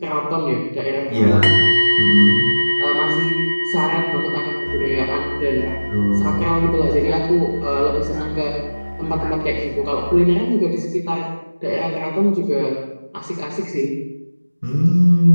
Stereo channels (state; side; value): inverted; both; correlation -1.00